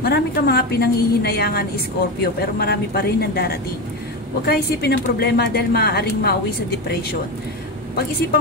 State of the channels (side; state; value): both; normal; correlation 0.17